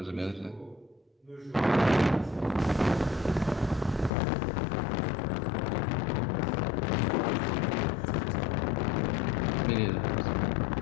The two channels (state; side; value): drops out; right; at 4.1 s